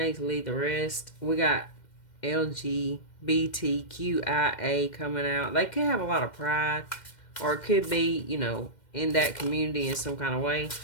leave the rest. We got LGBTQIA coming out. They could have a lot of pride, or it could be, in that community in some kind of way.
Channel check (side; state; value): right; late; 2.1 ms